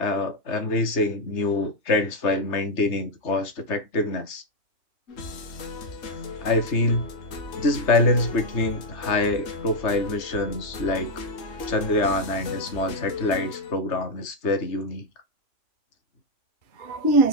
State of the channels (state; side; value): late; right; 3.3 ms